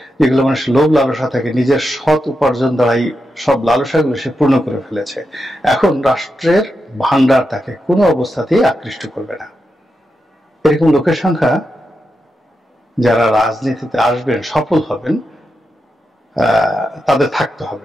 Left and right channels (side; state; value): both; normal; correlation 0.87